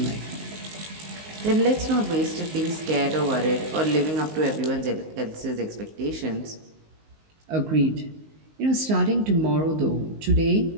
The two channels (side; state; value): left; late; 19 ms